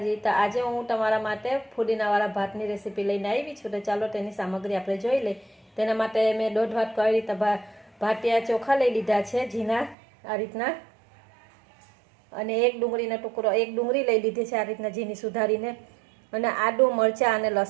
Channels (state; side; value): drops out; left; at 10.0 s